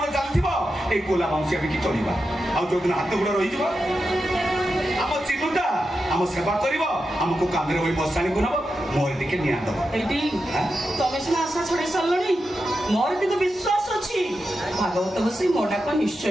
चालथिबो ए कोला मांसी अबे की चलिबा आ जो दिन हाथ गोड़ रहि जबो हम चिनुटा हम सेवा करबो हमको कांदरे होई बसानी गुनबो मोर दिके निया दबो एटी तमे सिना आशा छड़ी सल्लणी मोर किंतु विश्वास अछि भागवत बसी मोडा को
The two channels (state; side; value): normal; both; correlation 0.89